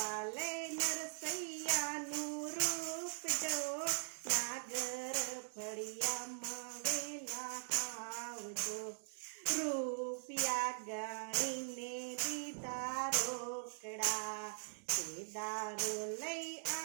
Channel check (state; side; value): silent; left; digital silence